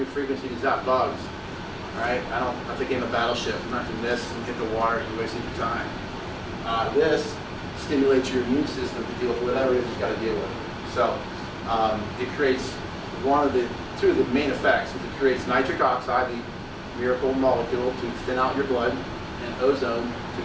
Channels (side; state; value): both; identical; correlation 1.00